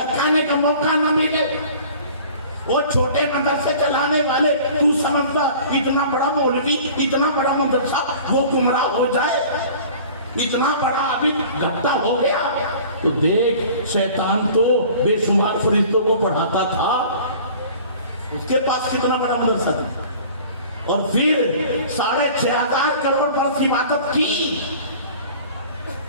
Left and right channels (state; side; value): inverted; both; correlation -0.46